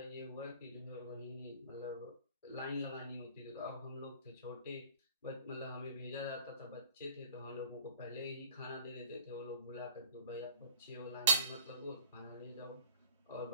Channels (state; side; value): inverted; both; correlation -0.44